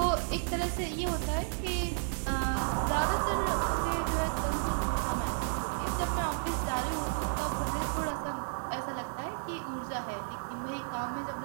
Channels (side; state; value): left; silent; digital silence